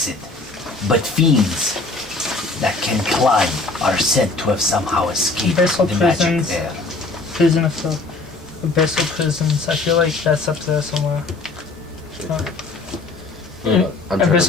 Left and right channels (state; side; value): quieter; right; 3.5 dB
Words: but fiends that can climb are said to have somehow escaped Abyssal the magic prisons. there. Prison of Filth. Abyssal prisons. I feel like that's up there somewhere. I'm trying